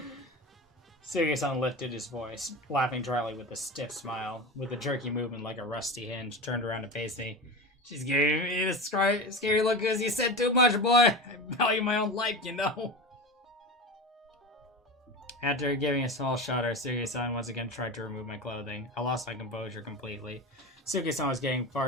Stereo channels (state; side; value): normal; both; correlation 0.26